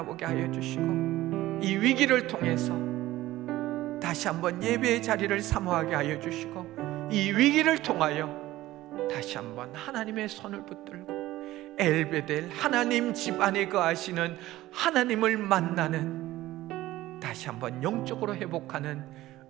하여 주시고, 이 위기를 통해서 다시 한번 예배의 자리를 사모하게 하여 주시고, 이 위기를 통하여 다시 한번 하나님의 손을 붙들고 엘베델, 하나님 집 안에 거하시는 하나님을 만나는, 다시 한번 영적으로 회복하는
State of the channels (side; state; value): left; quieter; 16.2 dB